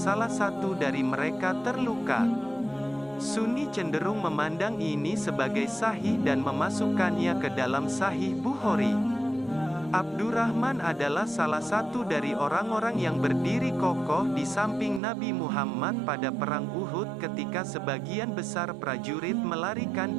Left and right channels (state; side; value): drops out; left; at 15.0 s